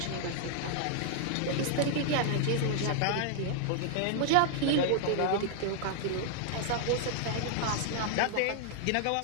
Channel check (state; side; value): different; both; correlation 0.00